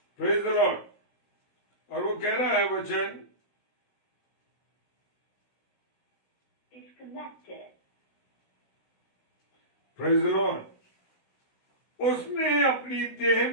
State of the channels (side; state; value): right; late; 16 ms